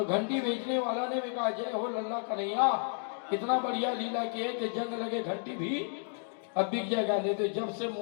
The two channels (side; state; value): right; silent; 56 dB below the other